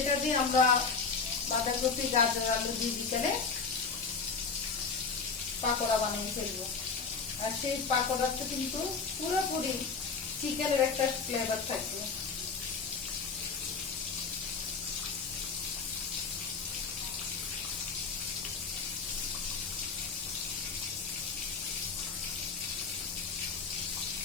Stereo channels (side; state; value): right; quieter; 5.1 dB